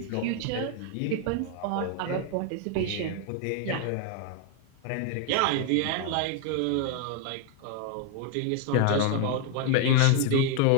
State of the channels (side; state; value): both; different; correlation 0.01